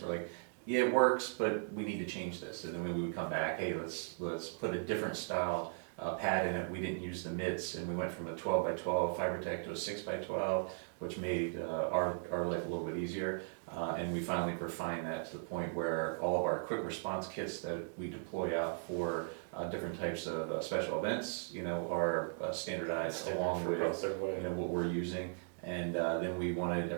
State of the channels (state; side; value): silent; left; digital silence